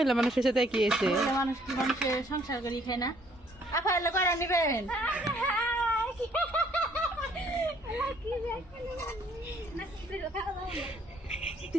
মানুষের সাথে কি এসে মানুষ কি মানুষের সংসার করি খায় না আপা এলে কয়টা নিবেন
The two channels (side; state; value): both; normal; correlation 0.62